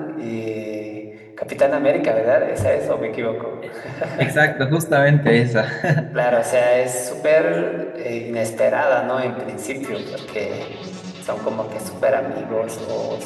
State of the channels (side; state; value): both; identical; correlation 1.00